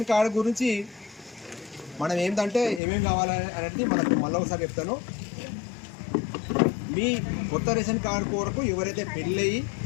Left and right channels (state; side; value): drops out; right; at 2.8 s